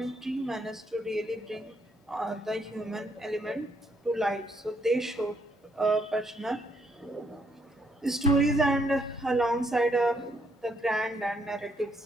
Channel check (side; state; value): both; normal; correlation 0.73